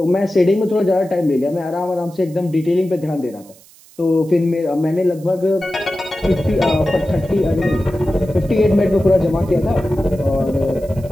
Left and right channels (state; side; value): noise; right; hiss, 25 dB below the sound